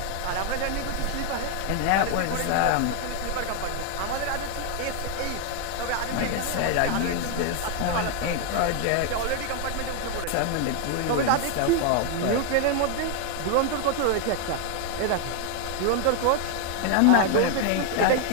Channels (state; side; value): different; both; correlation 0.00